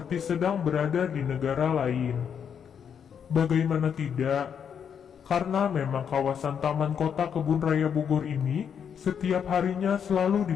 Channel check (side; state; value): right; quieter; 7.7 dB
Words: sedang berada di negara lain. Bagaimana tidak? Karena memang kawasan Taman Kota Kebun Raya Bogor ini setiap harinya selalu